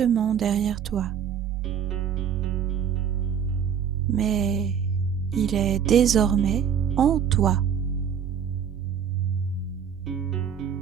derrière toi. Mais il est désormais en toi.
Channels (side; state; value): left; quieter; 8.0 dB